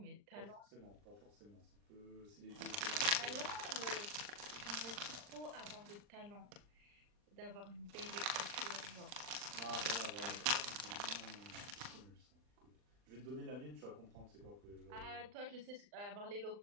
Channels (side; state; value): left; late; 39 ms